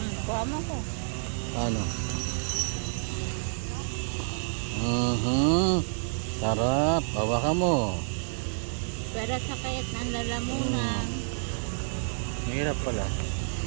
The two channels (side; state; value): left; silent; digital silence